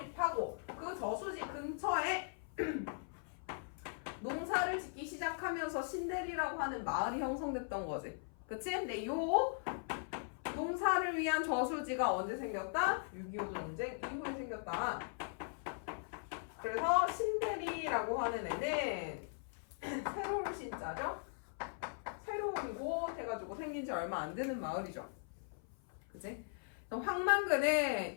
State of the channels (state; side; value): silent; right; 51 dB below the other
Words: 그 저수지 근처에 농사를 짓기 시작하면서 신대리라고 하는 마을이 형성됐던 거지. 그치? 근데 요 농사를 위한 저수지가 언제 생겼다? 6.25 전쟁 이후에 생겼다. 그래서 신대리라고 하는 애는 새로운 신자죠? 새로운 곳 해가지고 생긴 지 얼마 안 되는 마을이죠. 그치?